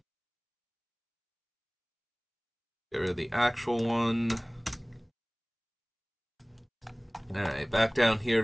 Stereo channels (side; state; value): both; identical; correlation 1.00